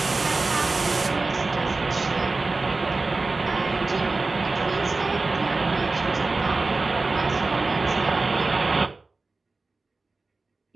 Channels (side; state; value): left; quieter; 3.6 dB